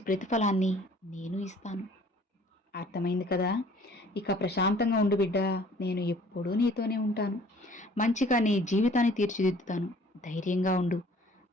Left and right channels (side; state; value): both; normal; correlation 0.54